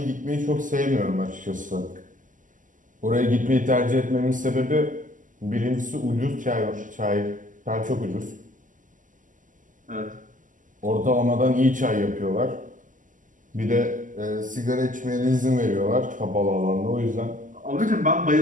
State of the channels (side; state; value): left; late; 0.38 ms